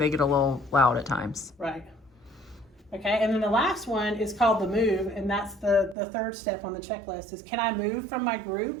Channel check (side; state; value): left; drops out; at 6.0 s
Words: get a little loud at times. Right. Okay, and then the last one is called the move, and that's the third step on the checklist is, can I move from my